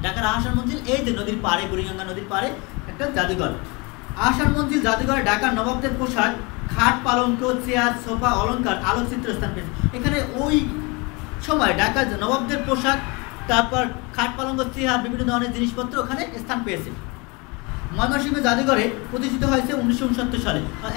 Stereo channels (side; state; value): right; quieter; 27.9 dB